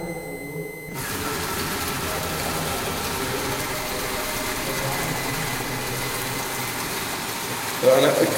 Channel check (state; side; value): identical; both; correlation 1.00